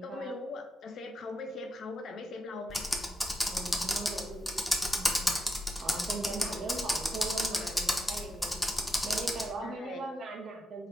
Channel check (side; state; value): both; normal; correlation 0.84